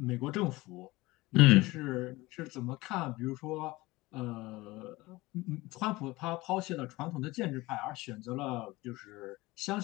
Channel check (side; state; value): right; quieter; 20.6 dB